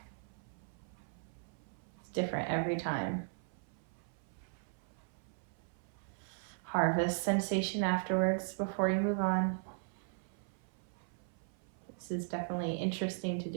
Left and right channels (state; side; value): silent; left; 52 dB below the other